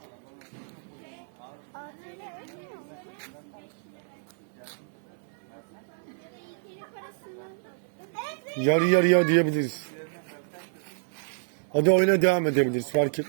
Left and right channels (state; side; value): silent; left; 59 dB below the other